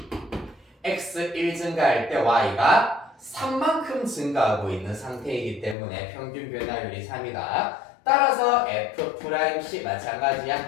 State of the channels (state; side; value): drops out; right; at 5.8 s